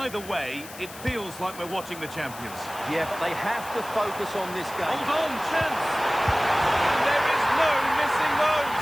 way, it feels like we're watching the champions. Yeah, but they have to focus on this game. Hold on, chance! And there is no missing those.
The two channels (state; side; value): noise; left; hiss, 15 dB below the sound